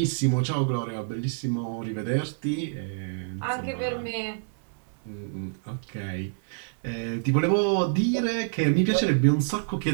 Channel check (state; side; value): silent; left; digital silence